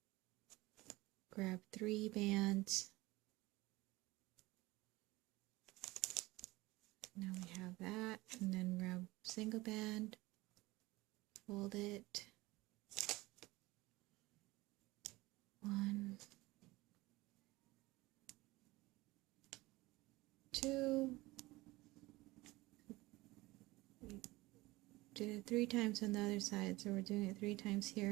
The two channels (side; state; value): left; quieter; 20.3 dB